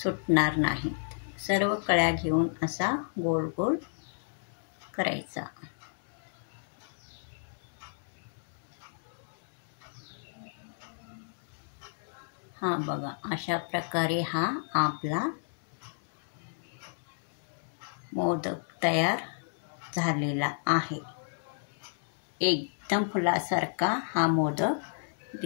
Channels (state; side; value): silent; right; digital silence